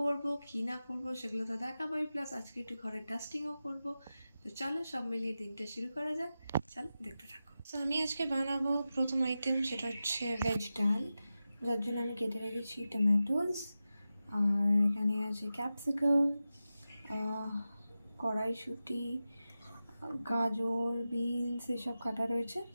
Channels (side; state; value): both; inverted; correlation -0.93